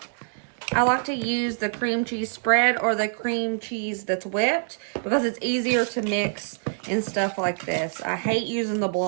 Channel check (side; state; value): left; silent; digital silence